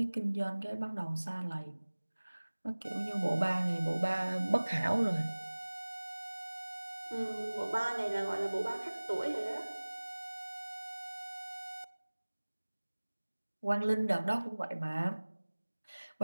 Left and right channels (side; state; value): both; inverted; correlation -1.00